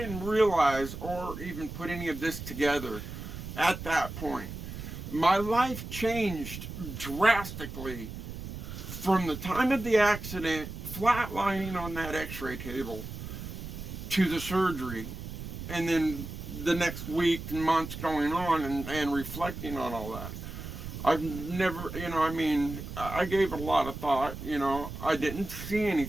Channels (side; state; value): right; noise; rumble, 9 dB below the sound